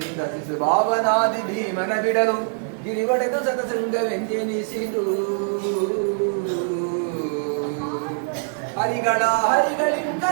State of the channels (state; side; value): silent; left; digital silence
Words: ಶಿಶು ಭಾವನಾದಿ ಭೀಮನ ಬಿಡಲು ಗಿರಿವಡೆದು ಸತಸಂಗವೆಂದೆನಿಸಿದು ಹರಿಗಳ ಹರಿಗಳಿಂ